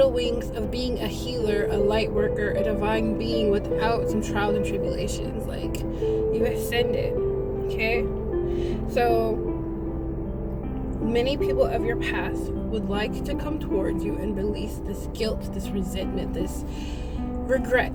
wings of being a healer, a light worker, a divine being without some trials and tribulations. Like, you ascended. Okay? So many people of your past would like to come towards you and release this guilt, this resentment, this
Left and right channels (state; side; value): identical; both; correlation 1.00